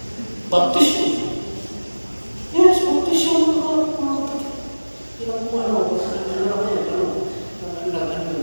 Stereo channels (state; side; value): inverted; both; correlation -1.00